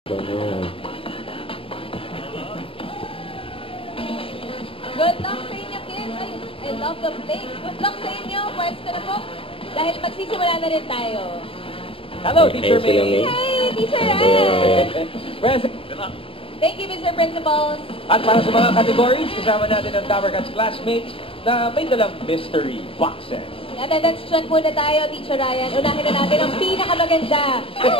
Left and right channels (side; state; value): right; late; 0.26 ms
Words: Good luck sa inyo, kids. I love the play. Good luck sa inyo. Pwesto na po. Dahil magsisimula na rin tayo. Hello, Teacher May. Hey, Teacher Ryan. Thank you, Mr. Principal. At para sa mga categories, kasama natin ang Tower Cats classmates na may dalang mystery boxes. Attendance check muna tayo, Teacher Ryan. Unahin na natin ang pinakamaganda.